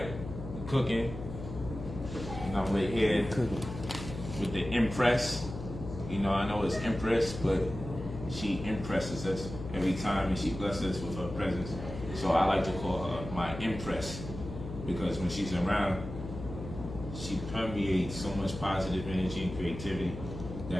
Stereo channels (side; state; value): left; noise; hum, 9 dB below the sound